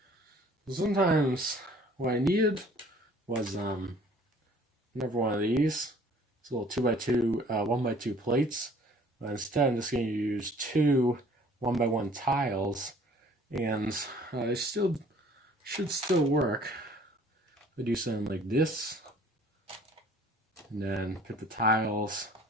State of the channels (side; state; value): both; normal; correlation 0.54